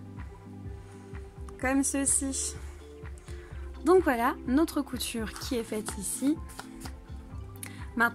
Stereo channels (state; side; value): identical; both; correlation 1.00